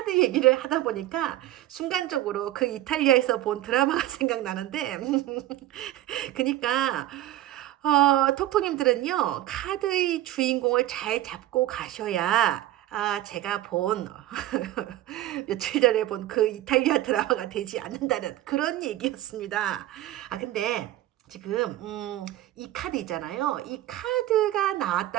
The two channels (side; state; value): left; quieter; 14.5 dB